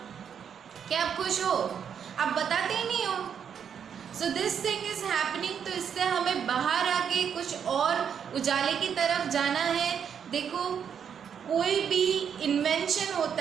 क्या आप खुश हो? आप बताते ही नहीं हो। So this thing is happening. तो इससे हमें बाहर आके कुछ और उजाले की तरफ जाना है। देखो, कोई भी इन्वेंशन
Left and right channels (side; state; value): left; quieter; 7.8 dB